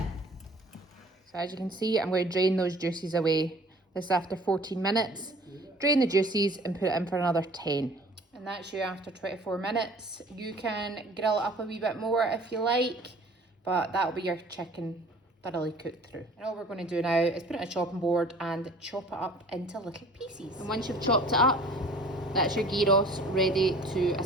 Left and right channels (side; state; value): both; normal; correlation 0.49